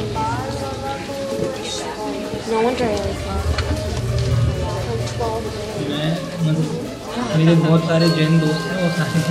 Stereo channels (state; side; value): identical; both; correlation 1.00